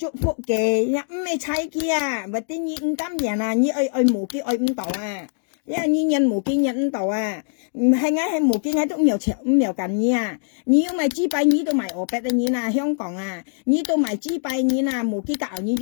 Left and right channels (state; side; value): silent; right; digital silence